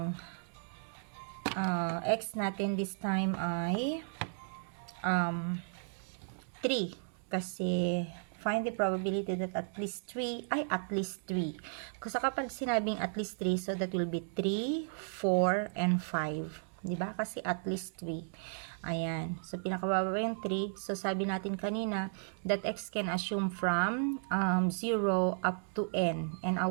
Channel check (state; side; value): silent; left; digital silence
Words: x natin this time ay 3. Kasi, find the probability that at least 3 ay at least 3. Kasi kapag sinabing at least 3, so that will be 3, 4, and 5. Diba? Kasi at least 3. Ayan. So, pinakababa yung 3. So, sabi natin kanina that x can assume from 0 up to n. And